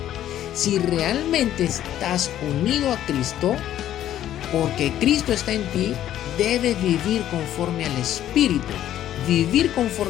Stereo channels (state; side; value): quieter; right; 11.9 dB